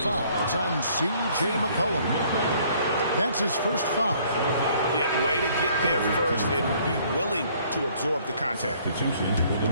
It's on C.J. McCollum. That's his first foul. Yeah, way to get there first and be willing to absorb the contact. Substitution for the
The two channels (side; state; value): both; inverted; correlation -0.61